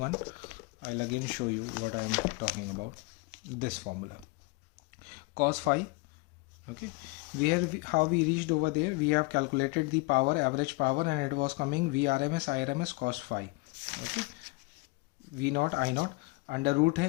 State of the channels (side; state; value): right; quieter; 25.6 dB